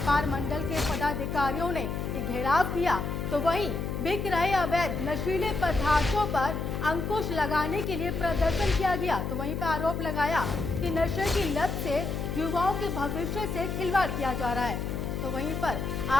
मंडल के पदाधिकारियों ने ये घेराव किया, तो वहीं बिक रहे अवैध नशीले पदार्थों पर अंकुश लगाने के लिए प्रदर्शन किया गया। तो वहीं पर आरोप लगाया कि नशे की लत से युवाओं के भविष्य से खिलवाड़ किया जा रहा है। तो वहीं पर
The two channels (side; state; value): left; noise; hum, 3 dB below the sound